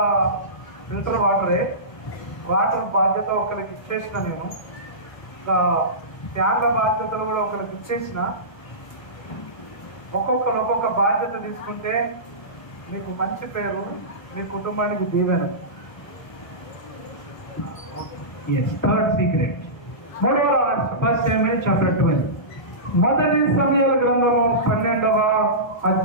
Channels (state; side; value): late; right; 1.1 ms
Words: ఫిల్టర్ వాటరే. వాటర్ బాధ్యత ఒకరికి ఇచ్చేసిన నేను, ఫ్యాన్ల బాధ్యతలు కూడా ఒకరికి ఇచ్చేసిన. ఒక్కొక్కరు ఒక్కొక్క బాధ్యత తీసుకుంటే మీకు మంచి పేరు, మీ కుటుంబానికి దీవెన. Yes. Third secret. మూడవ రహస్యం. 1 Samuel chapter 12. మొదటి సమూయేలు గ్రంథము 12వ